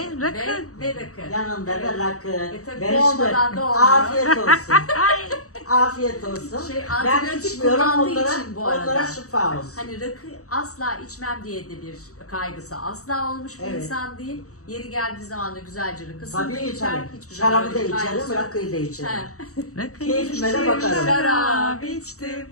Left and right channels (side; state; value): right; late; 0.65 ms